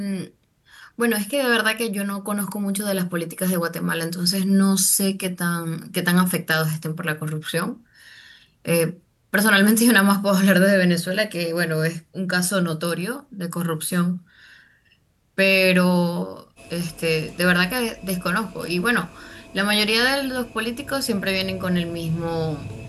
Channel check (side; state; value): both; identical; correlation 1.00